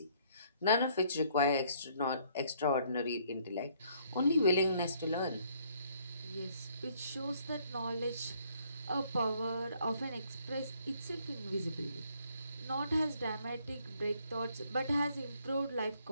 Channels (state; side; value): inverted; both; correlation -0.65